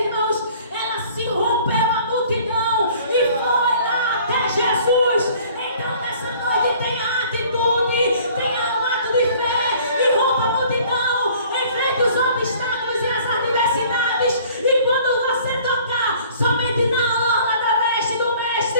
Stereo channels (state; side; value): inverted; both; correlation -0.52